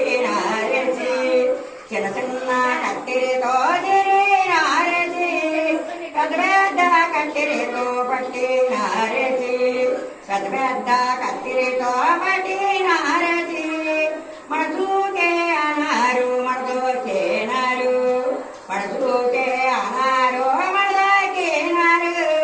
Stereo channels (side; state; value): both; identical; correlation 1.00